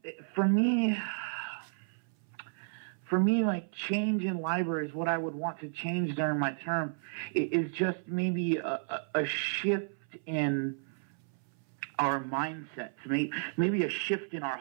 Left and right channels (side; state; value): left; silent; 56 dB below the other